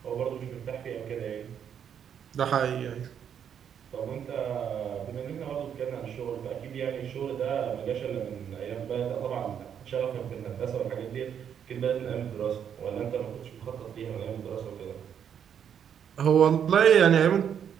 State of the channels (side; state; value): left; quieter; 8.5 dB